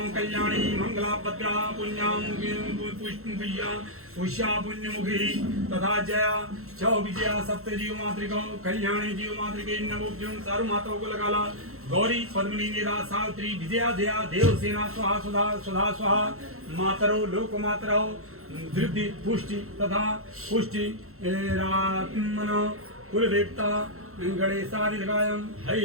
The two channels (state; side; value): late; left; 0.63 ms